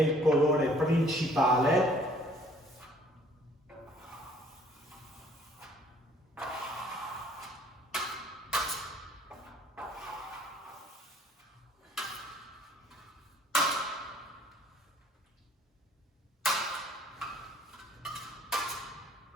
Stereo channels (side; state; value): both; normal; correlation 0.58